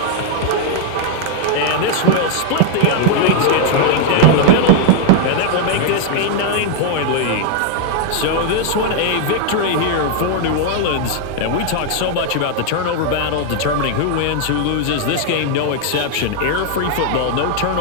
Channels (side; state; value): both; different; correlation 0.00